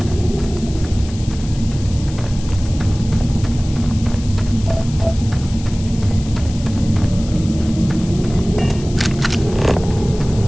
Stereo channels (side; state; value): left; noise; hiss, 17 dB below the sound